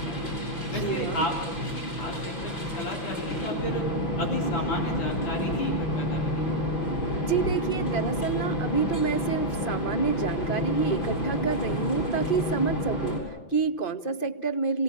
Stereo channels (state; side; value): late; right; 6.0 ms